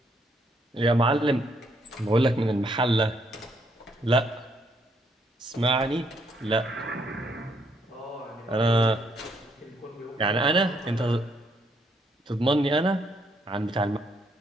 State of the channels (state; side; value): normal; both; correlation 0.72